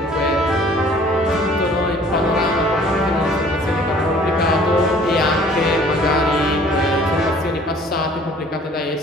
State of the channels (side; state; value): both; normal; correlation 0.54